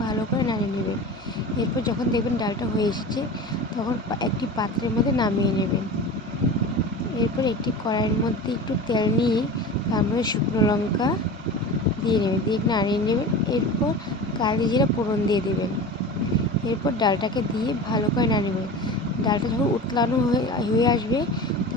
ভালো করে নাড়িয়ে নেবেন। এরপর যখন দেখবেন ডালটা হয়ে এসেছে, তখন একটি পাত্রের মধ্যে নামিয়ে নেবেন। এরপর একটি কড়াইয়ের মধ্যে একটু তেল নিয়ে তার মধ্যে শুকনো লঙ্কা দিয়ে নেবেন, দিয়ে নাড়িয়ে নেবেন। এরপর কালি জিরা ফোড়ন দিয়ে দেবেন। এরপর ডালটাকে দিয়ে ভালো করে নাড়িয়ে নেবেন। ডালটা যখন উতলানো হয়ে আসবে,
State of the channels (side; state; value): both; normal; correlation 0.32